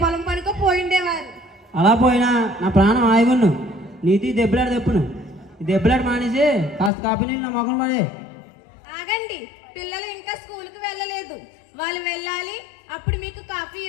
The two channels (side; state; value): right; drops out; at 6.9 s